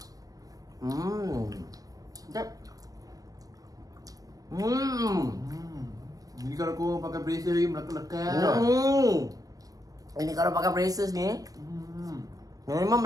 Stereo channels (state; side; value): late; left; 0.18 ms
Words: Sekejap. Jadi kalau korang pakai bracer lagi melekat-lekat. Ini kalau pakai braces ni, memang